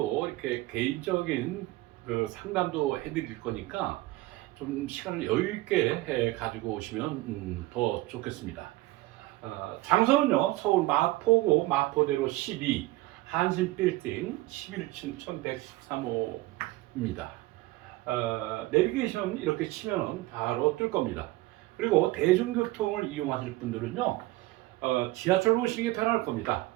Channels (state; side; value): quieter; left; 19.1 dB